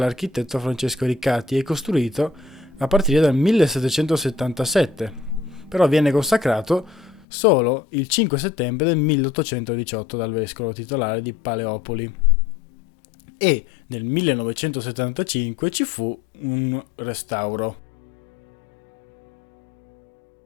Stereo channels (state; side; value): drops out; right; at 7.2 s